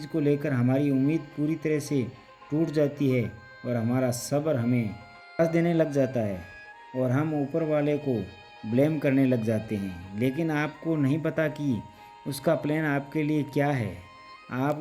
को लेकर हमारी उम्मीद पूरी तरह से टूट जाती है और हमारा सब्र हमें निराश देने लग जाता है और हम ऊपर वाले को ब्लेम करने लग जाते हैं। लेकिन आपको नहीं पता कि उसका प्लान आपके लिए क्या है। आप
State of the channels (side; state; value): both; identical; correlation 1.00